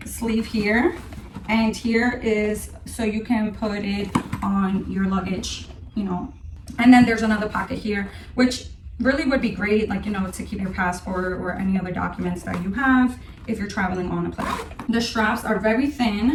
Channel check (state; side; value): identical; both; correlation 1.00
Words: sleeve here, and here is so you can put it on your luggage, you know. And then there's another pocket here, which really would be great, like, you know, to keep your passport or any other documents that you have if you're traveling on a plane. The straps are very